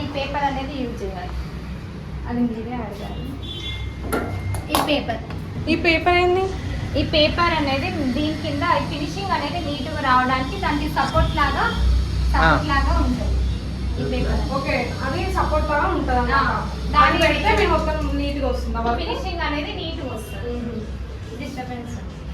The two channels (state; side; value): identical; both; correlation 1.00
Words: ఈ పేపర్ అనేది యూజ్ చేయాలి. అది మీరే అడగాలి. ఈ పేపర్ ఏంది? ఈ పేపర్ అనేది దీని కింద ఫినిషింగ్ అనేది నీట్గా రావడానికి దానికి సపోర్ట్ లాగా ఉంటుంది ఈ పేపర్. ఓకే, అది సపోర్ట్ లాగా ఉంటుంది అన్నమాట. దాన్ని పెడితే మేము మొత్తం నీట్గా వస్తుంది. ఫినిషింగ్ అనేది నీట్గా వస్తుంది. డిస్టర్బెన్స్